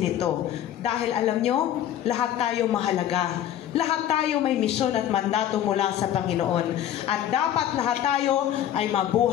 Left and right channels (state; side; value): quieter; right; 11.1 dB